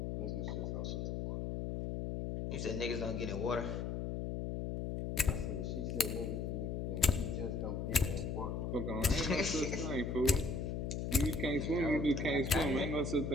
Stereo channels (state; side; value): noise; left; hum, 2 dB below the sound